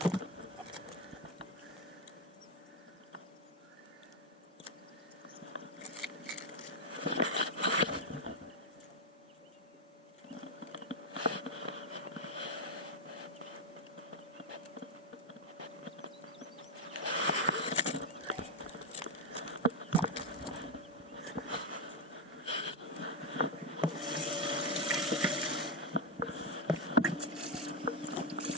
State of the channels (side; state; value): both; normal; correlation 0.04